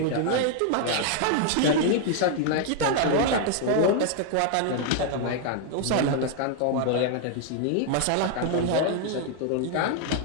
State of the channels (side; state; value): both; different; correlation 0.00